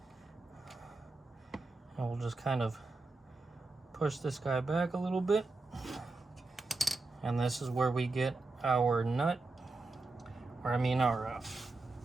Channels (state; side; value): quieter; left; 3.4 dB